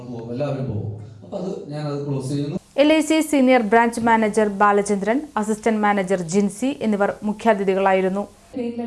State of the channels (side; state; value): both; identical; correlation 1.00